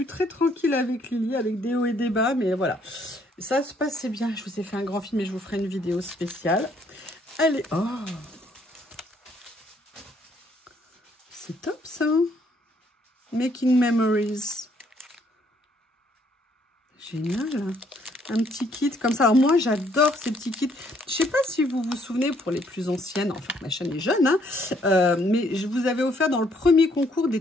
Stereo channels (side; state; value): both; normal; correlation 0.67